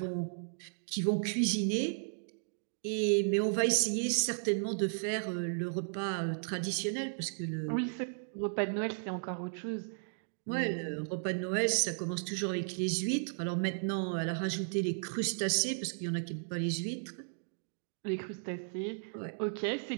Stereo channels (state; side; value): silent; left; digital silence